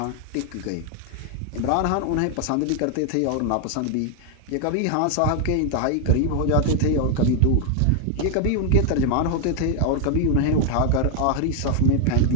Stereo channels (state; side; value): different; both; correlation 0.00